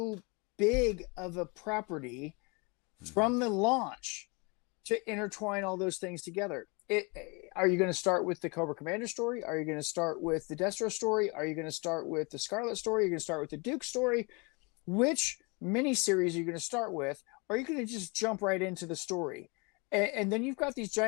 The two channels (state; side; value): quieter; right; 30.0 dB